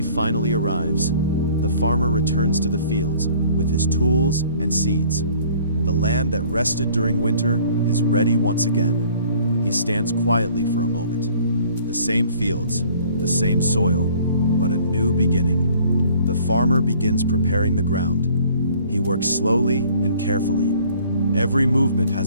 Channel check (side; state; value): both; inverted; correlation -0.54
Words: finally arrives. The farmer returns to the fields with his tools and seeds. The land that rested during winter is ready once again. He stands quietly for a moment. The same fields, the same soil, but a new beginning. The farmer begins preparing the ground. He works slowly and carefully. Every movement